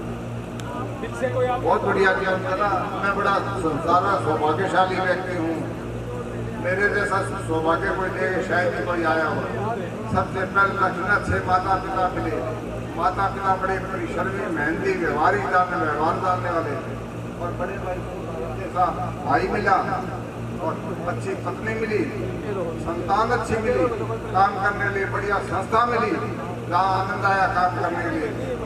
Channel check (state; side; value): identical; both; correlation 1.00